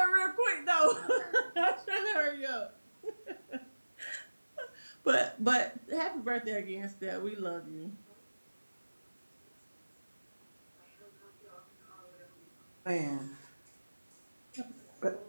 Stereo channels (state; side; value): inverted; both; correlation -1.00